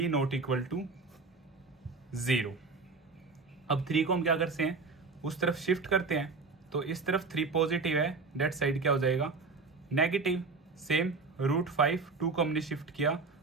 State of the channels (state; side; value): quieter; left; 4.2 dB